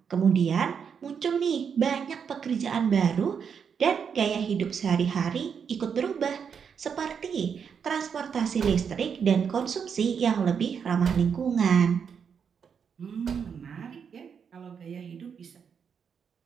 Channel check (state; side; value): quieter; left; 6.9 dB